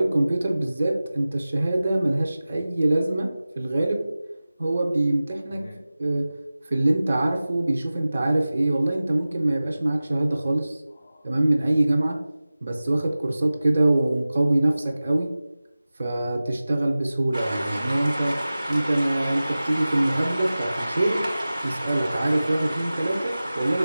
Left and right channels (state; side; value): inverted; both; correlation -0.97